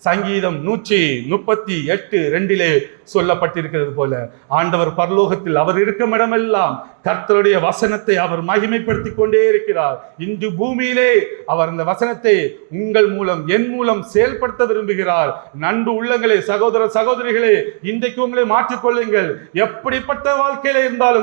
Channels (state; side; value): silent; left; digital silence